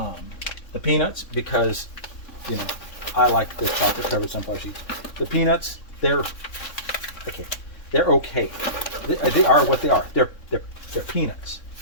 peanuts, because, you know, I like the chocolate covered sunflower seeds. The peanuts, they're okay. They're okay. They are what they are. They're peanuts.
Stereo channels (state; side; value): late; right; 3.6 ms